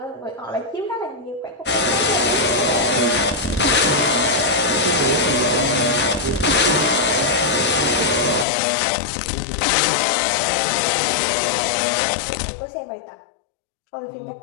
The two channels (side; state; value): right; drops out; at 8.5 s